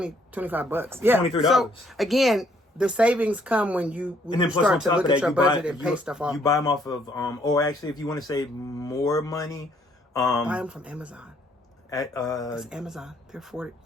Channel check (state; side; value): normal; both; correlation 0.67